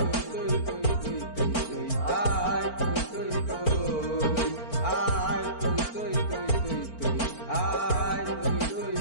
তুই তুই তুই তুই তুই, আয় তুই তুই তুই, আয় তুই তুই তুই তুই তুই, আয় তুই তুই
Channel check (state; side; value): late; right; 4.4 ms